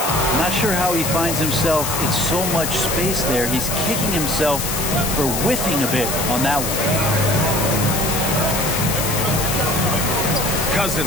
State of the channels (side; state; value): left; noise; hiss, 3 dB below the sound